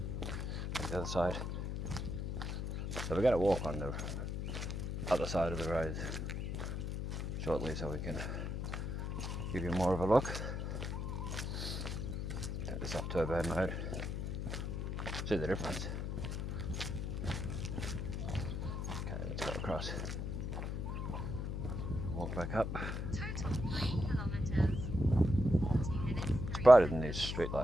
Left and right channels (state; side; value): noise; left; hum, 3 dB below the sound